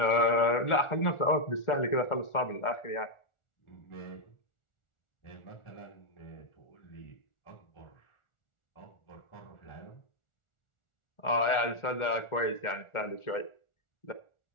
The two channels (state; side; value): late; right; 1.4 ms